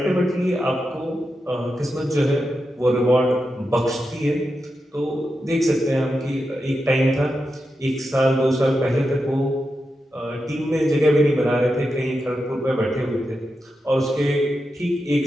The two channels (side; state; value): both; normal; correlation 0.88